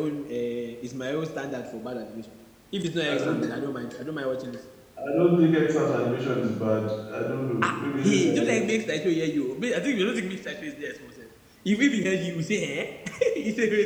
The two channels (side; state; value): both; identical; correlation 1.00